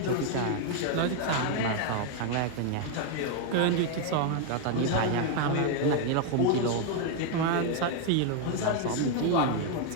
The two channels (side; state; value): both; different; correlation 0.00